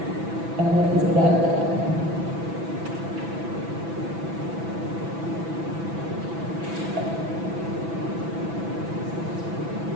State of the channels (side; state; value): left; late; 6.0 ms